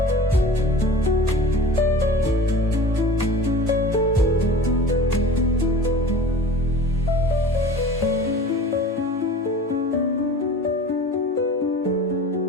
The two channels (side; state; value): both; normal; correlation 0.39